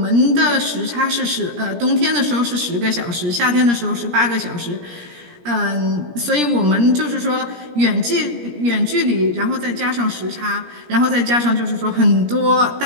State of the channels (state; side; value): late; left; 17 ms